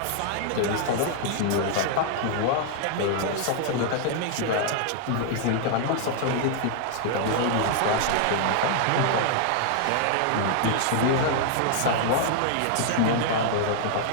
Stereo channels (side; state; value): both; different; correlation -0.01